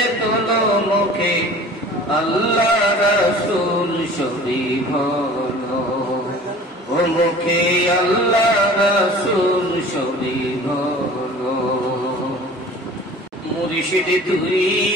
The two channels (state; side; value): normal; both; correlation 0.44